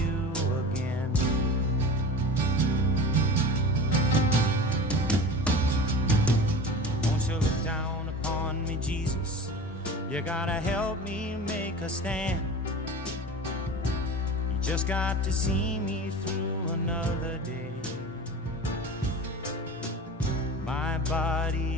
again. Won't you look down upon me, Jesus? You gotta help me make a stand. You just got to see me through another day. My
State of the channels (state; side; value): normal; both; correlation 0.34